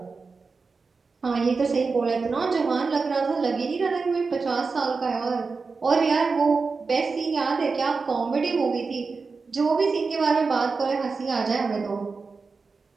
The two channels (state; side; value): quieter; left; 4.5 dB